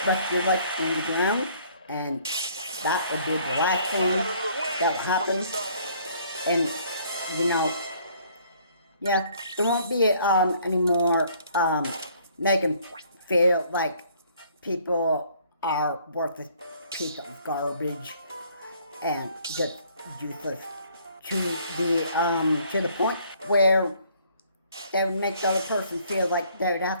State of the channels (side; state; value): both; inverted; correlation -0.61